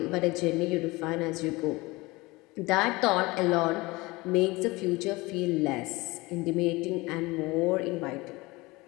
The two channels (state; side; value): quieter; right; 22.5 dB